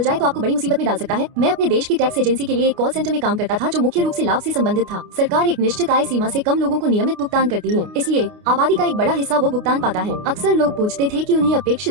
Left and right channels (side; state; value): left; late; 29 ms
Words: जाए तो आपको बड़ी मुसीबत में डाल सकता है? मैं अपने देश की टैक्स एजेंसी के लिए एक कॉल सेंटर में काम करता था जो मुख्य रूप से लाभ से संबंधित था। सरकार एक निश्चित आय सीमा से कम लोगों को नियमित भुगतान करती है, इसलिए आबादी का एक बड़ा हिस्सा वो भुगतान पाता है। अक्सर लोग पूछते थे कि उन्हें